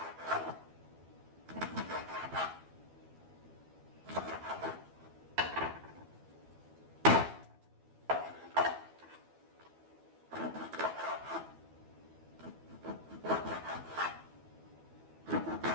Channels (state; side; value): late; left; 12 ms